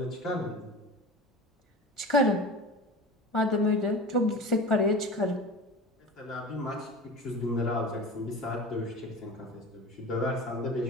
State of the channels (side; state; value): both; normal; correlation 0.33